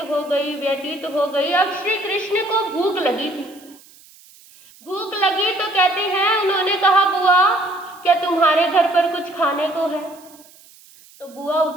हो गई। अब श्री कृष्ण को भूख लगी थी। भूख लगी तो कहते हैं, उन्होंने कहा, बुआ क्या तुम्हारे घर पर कुछ खाने को है? तो बुआ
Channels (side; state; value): right; noise; hiss, 25 dB below the sound